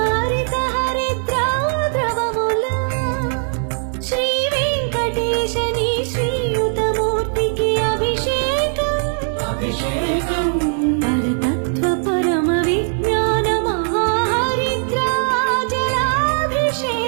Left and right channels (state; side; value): silent; left; 66 dB below the other